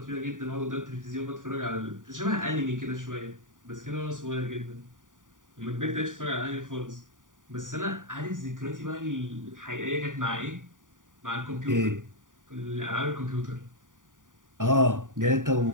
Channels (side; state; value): left; late; 0.88 ms